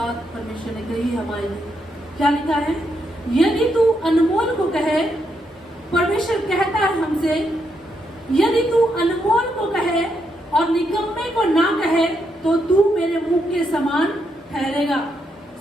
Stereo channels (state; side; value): normal; both; correlation 0.80